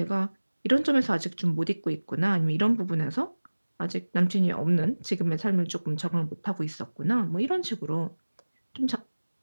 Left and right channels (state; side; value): inverted; both; correlation -1.00